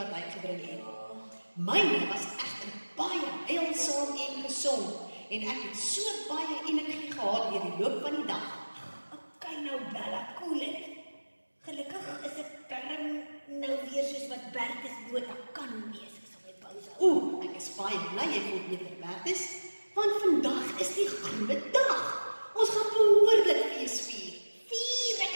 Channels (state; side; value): inverted; both; correlation -1.00